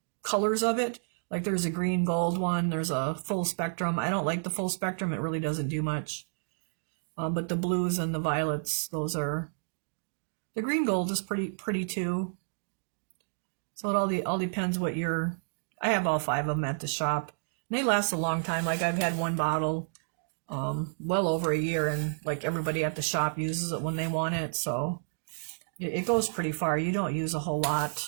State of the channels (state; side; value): silent; left; digital silence